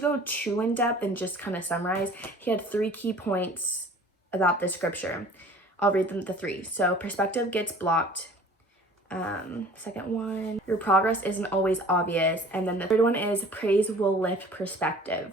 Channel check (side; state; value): both; normal; correlation 0.47